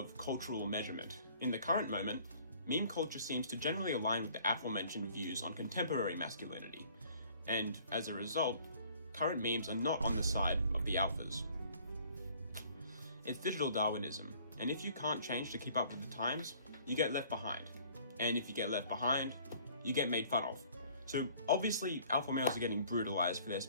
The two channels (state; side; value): inverted; both; correlation -0.55